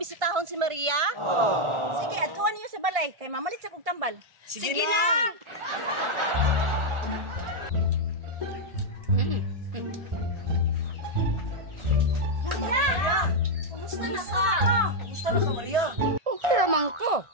si Maria? Sige, atuan niyo sa balay kay mamalit sa kog tambal. Sige, na. Maria! Kumusta na ka? Kumusta na ka, Maria? Okay naman ko.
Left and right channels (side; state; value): left; late; 1.5 ms